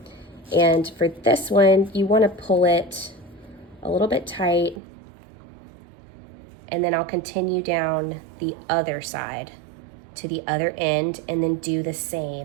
And for this one, you want to pull it a little bit tight and then I'll continue down the other side to the other end and then do the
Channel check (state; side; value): drops out; left; at 4.8 s